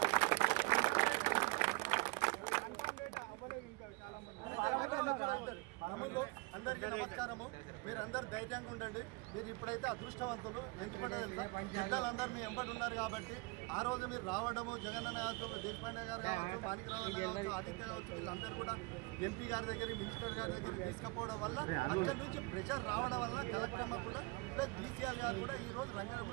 అందరికీ నమస్కారము. మీరందరూ ధైర్యంగా ఉండండి. మీరు ఇప్పుడైతే అదృష్టవంతులు. ఎందుకంటే పెద్దలందరూ మీ వెంబడి ఉన్నారు కాబట్టి ఆ రోజు మీరు రావడము జగనన్న కావచ్చు, దేశపాండే గారు కావచ్చు, మాణిక్రావు కావచ్చు, ఆదిత్య కావచ్చు, వీళ్ళందరూ కూడా ఎంపీ గారి దగ్గర మినిస్టర్ గారి దగ్గర తీసుకుపోవడం వల్ల అక్కడి నుంచి ప్రెషర్ రావడం వల్ల కలెక్టర్ అమ్మ కూడా ప్లస్ డీసీఆర్ గారు కూడా ఈ రోజు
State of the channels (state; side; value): quieter; left; 26.0 dB